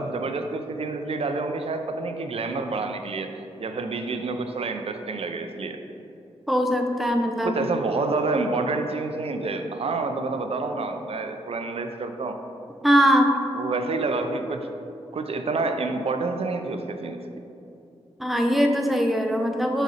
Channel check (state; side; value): normal; both; correlation 0.69